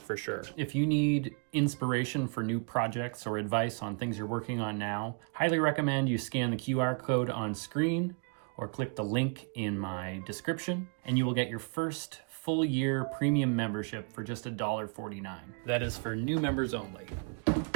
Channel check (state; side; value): quieter; left; 38.9 dB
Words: for sure. If you need inspiration for new projects or advice on things you're working on now, highly recommend you scan the QR code on screen or click the link in my description, and you will get your first full year premium membership for just $1.49. That is for new members only.